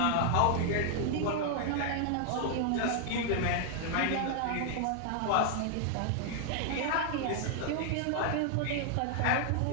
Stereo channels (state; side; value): different; both; correlation 0.00